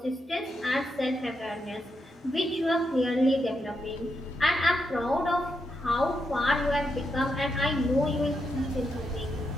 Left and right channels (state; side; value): normal; both; correlation 0.83